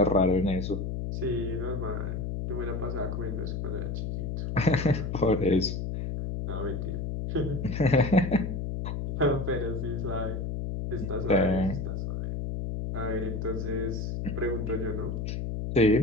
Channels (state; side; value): noise; left; hum, 3 dB below the sound